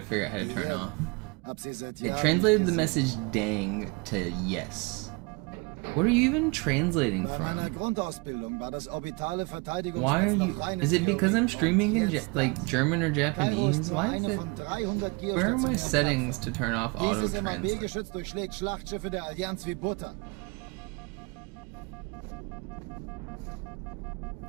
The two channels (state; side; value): quieter; left; 29.4 dB